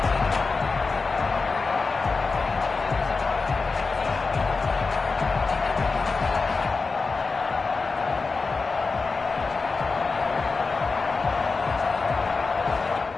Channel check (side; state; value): right; quieter; 4.2 dB